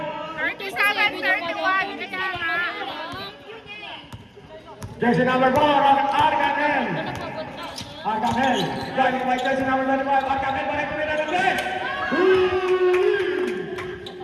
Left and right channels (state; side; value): identical; both; correlation 1.00